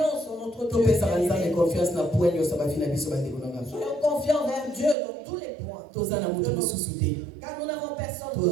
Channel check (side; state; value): left; drops out; at 5.0 s